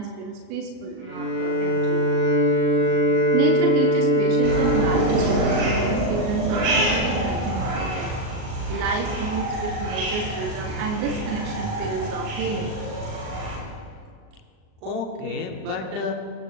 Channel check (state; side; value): late; left; 38 ms